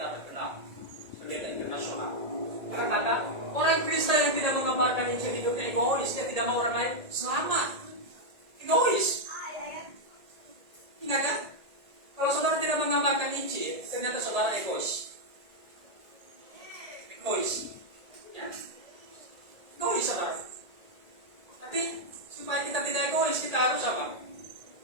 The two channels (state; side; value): late; left; 1.8 ms